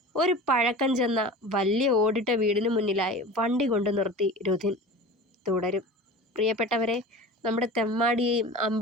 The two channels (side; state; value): both; normal; correlation 0.35